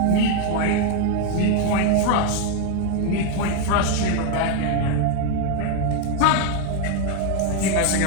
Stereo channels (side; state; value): both; different; correlation 0.00